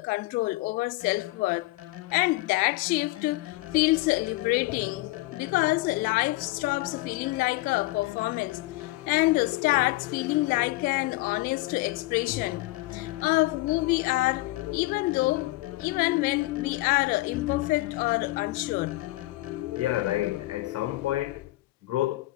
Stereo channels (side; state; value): right; quieter; 20.3 dB